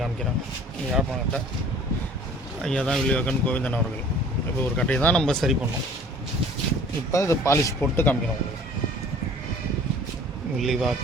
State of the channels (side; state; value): both; normal; correlation 0.49